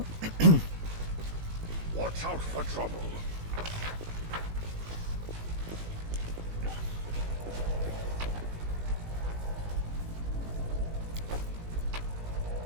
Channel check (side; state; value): left; late; 18 ms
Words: Watch out for trouble.